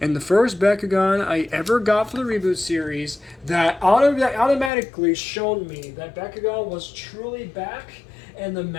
the first Bakugan I ever got for the reboot series that automatically showed me that Bakugan was truly back, and the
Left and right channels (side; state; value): right; drops out; at 4.7 s